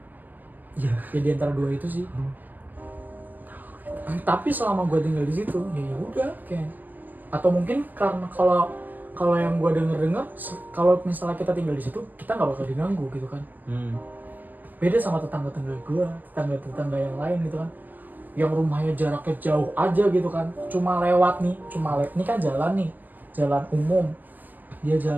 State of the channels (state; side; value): late; left; 0.085 ms